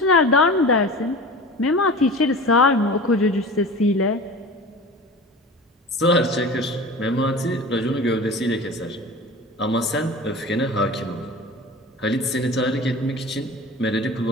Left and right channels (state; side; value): normal; both; correlation 0.36